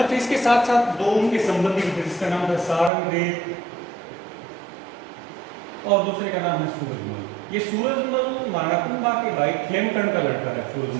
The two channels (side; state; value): left; drops out; at 2.9 s